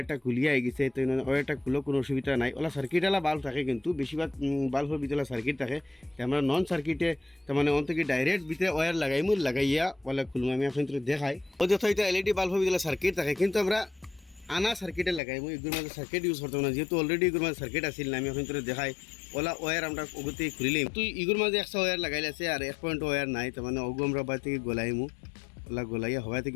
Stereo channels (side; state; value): right; drops out; at 15.2 s